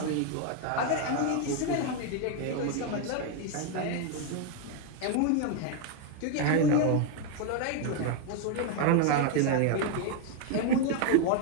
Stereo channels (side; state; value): both; different; correlation 0.01